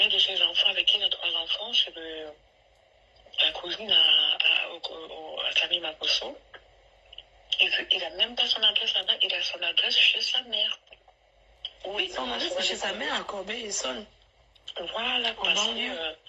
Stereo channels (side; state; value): both; identical; correlation 1.00